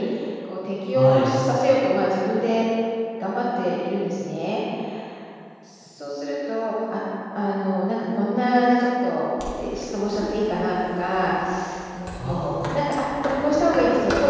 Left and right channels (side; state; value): both; identical; correlation 1.00